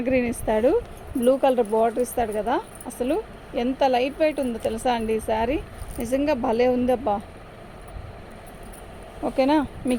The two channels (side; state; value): both; identical; correlation 1.00